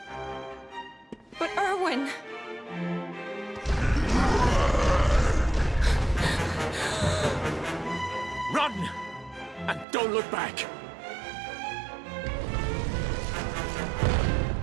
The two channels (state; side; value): drops out; left; at 9.9 s